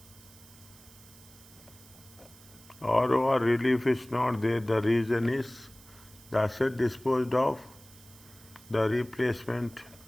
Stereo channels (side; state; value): right; noise; hiss, 22 dB below the sound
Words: ROR relief is not there. The reason is the asset disposed of, the replacement,